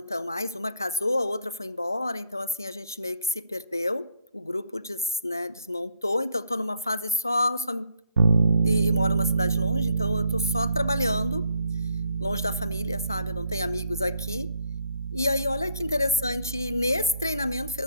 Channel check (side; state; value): both; inverted; correlation -0.71